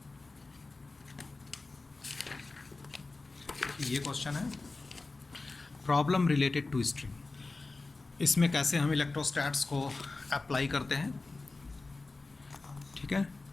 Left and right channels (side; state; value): right; quieter; 3.5 dB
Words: ये क्वेश्चन है प्रॉब्लम रिलेटेड टू स्ट्रिंग, इसमें कैसे हम इलेक्ट्रोस्टैट्स को अप्लाई करते हैं। ठीक है,